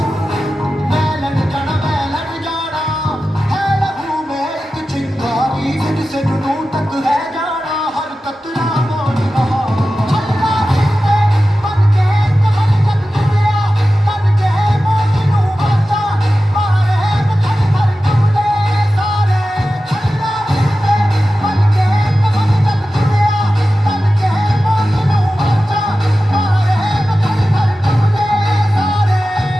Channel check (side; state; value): both; normal; correlation 0.94